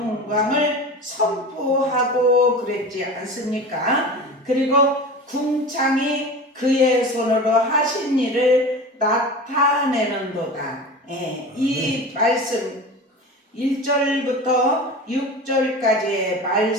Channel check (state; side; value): normal; both; correlation 0.32